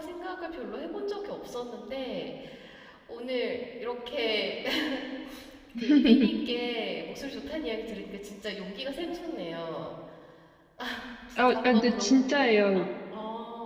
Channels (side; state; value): both; identical; correlation 1.00